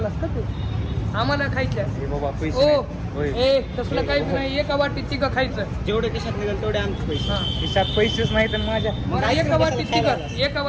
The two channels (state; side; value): identical; both; correlation 1.00